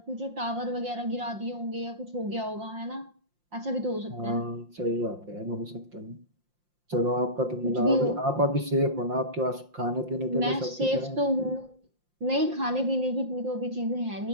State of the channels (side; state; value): left; late; 5.7 ms